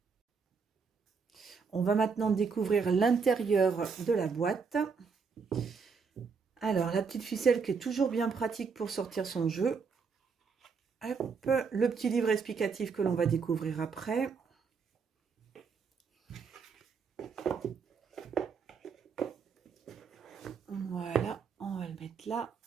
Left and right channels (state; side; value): quieter; left; 5.5 dB